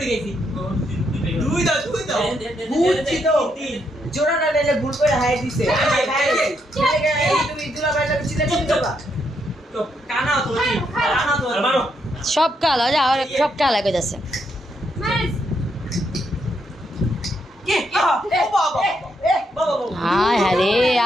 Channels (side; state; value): both; normal; correlation 0.77